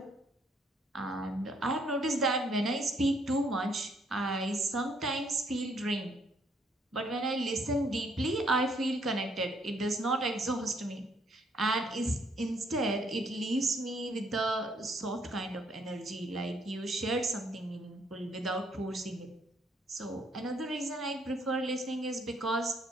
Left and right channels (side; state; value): both; normal; correlation 0.68